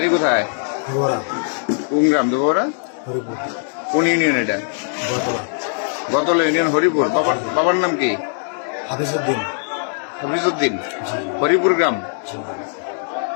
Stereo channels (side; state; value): right; silent; digital silence